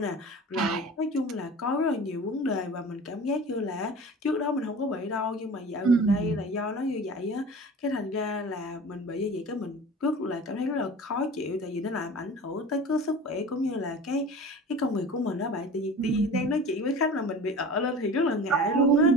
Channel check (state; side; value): normal; both; correlation 0.38